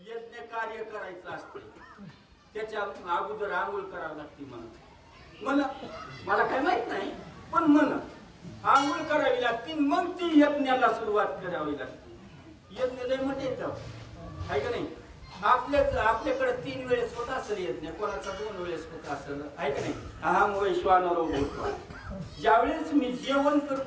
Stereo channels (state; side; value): identical; both; correlation 1.00